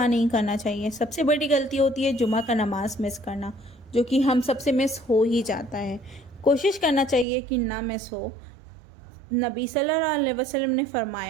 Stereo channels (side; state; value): left; drops out; at 7.2 s